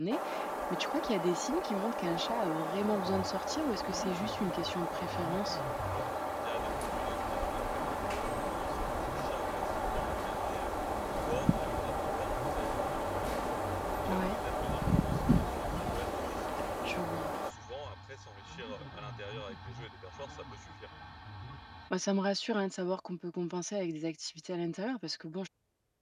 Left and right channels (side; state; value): both; identical; correlation 1.00